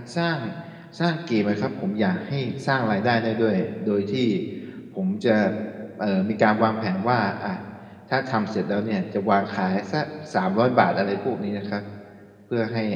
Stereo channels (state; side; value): identical; both; correlation 1.00